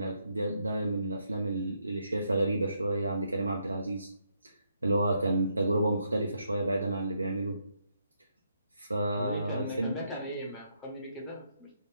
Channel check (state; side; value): inverted; both; correlation -0.77